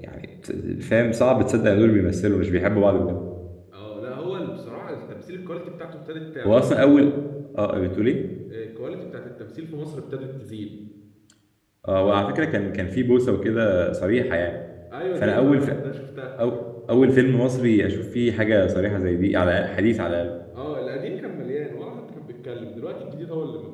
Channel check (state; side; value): identical; both; correlation 1.00